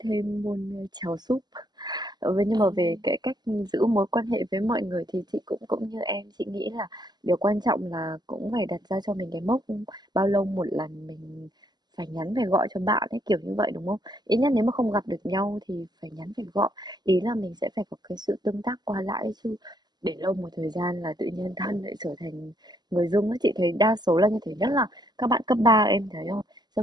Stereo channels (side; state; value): left; late; 0.20 ms